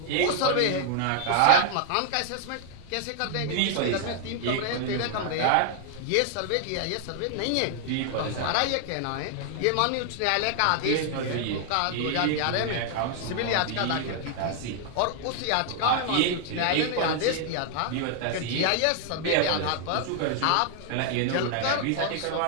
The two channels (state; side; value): different; both; correlation 0.00